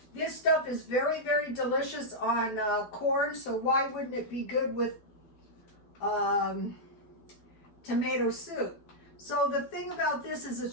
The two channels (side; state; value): right; late; 12 ms